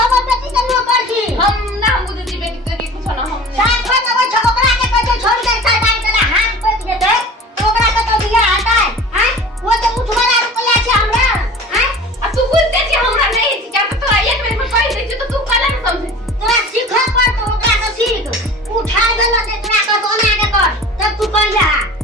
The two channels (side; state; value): both; normal; correlation 0.40